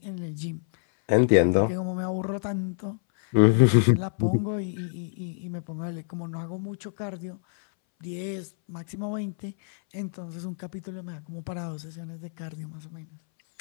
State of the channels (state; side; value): silent; right; 60 dB below the other